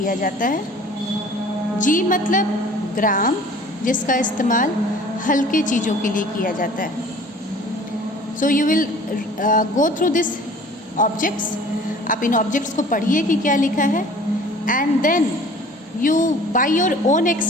जाता है. जी मतलब ग्राम, जिसका इस्तेमाल हल्के चीज़ों के लिए किया जाता है. So you will go through this objects. आप इन ऑब्जेक्ट्स को पढ़िए कि क्या लिखा है and then you by your own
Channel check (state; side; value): normal; both; correlation 0.48